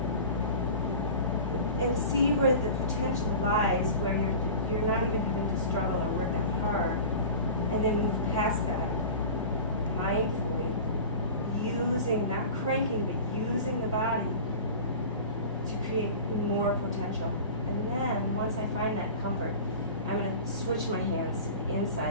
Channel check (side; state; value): both; inverted; correlation -0.36